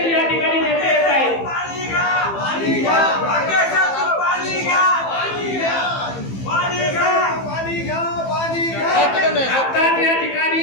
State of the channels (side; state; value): right; late; 15 ms